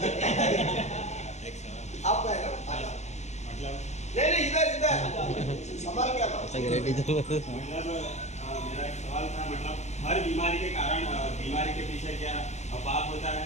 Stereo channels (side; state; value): right; late; 0.33 ms